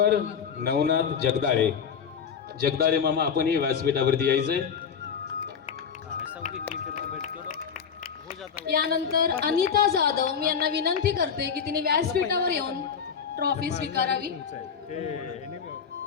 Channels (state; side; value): quieter; right; 6.9 dB